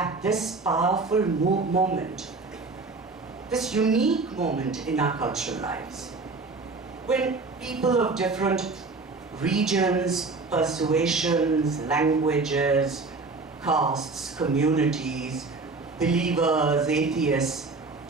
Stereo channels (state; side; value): quieter; left; 3.9 dB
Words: this powerful moment, this unique moment in our cultural lives, when people of different regions, persuasions, languages, castes, communities, believers, atheists,